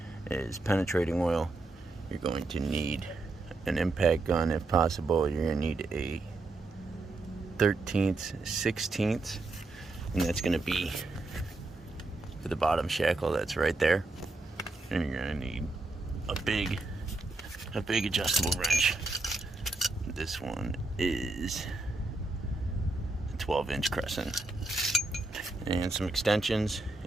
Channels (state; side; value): quieter; left; 3.1 dB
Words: is penetrating oil. You're going to need an impact gun if possible. You're going to need a 13th, 16th. And that's going to be for the bottom shackle that's right there. And you're going to need a big adjustable wrench. This one is a 12-inch crescent. And some extensions